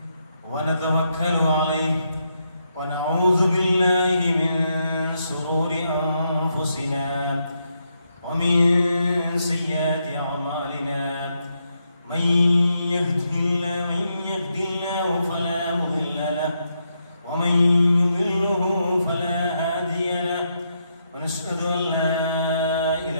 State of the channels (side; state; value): both; inverted; correlation -0.80